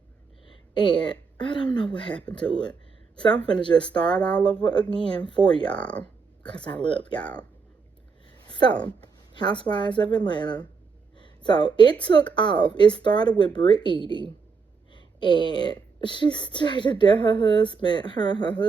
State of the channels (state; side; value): quieter; left; 5.1 dB